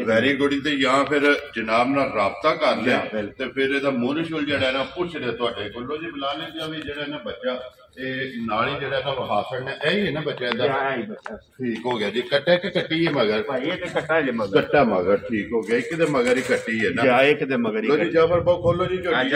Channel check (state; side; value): identical; both; correlation 1.00